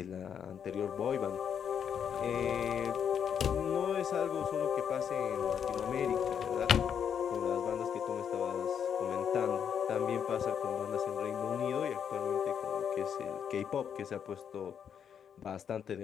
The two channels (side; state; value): right; quieter; 8.0 dB